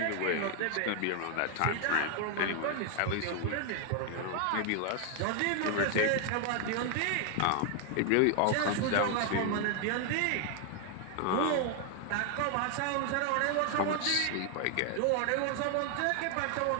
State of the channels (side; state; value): both; different; correlation 0.00